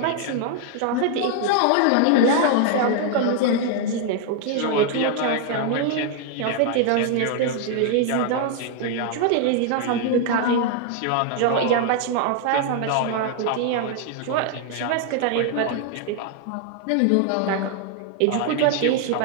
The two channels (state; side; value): different; both; correlation 0.00